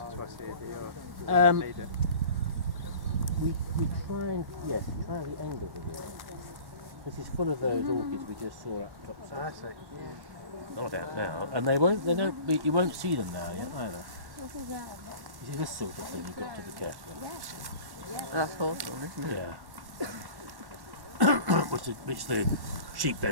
twice a year? Um, Need it? We try and try the angle of it. This is full of those orchids we just saw up top. I see. Not out now, and you won't see them now yet either. You see this sort of thing, you've got to be careful. That's hawthorn, isn't it? Yeah. which the sheep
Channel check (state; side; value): late; left; 1.1 ms